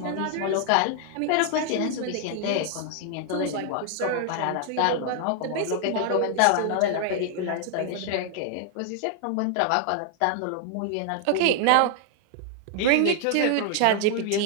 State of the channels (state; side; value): different; both; correlation 0.00